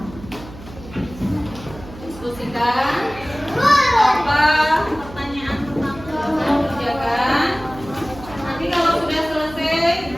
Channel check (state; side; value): noise; right; hum, 16 dB below the sound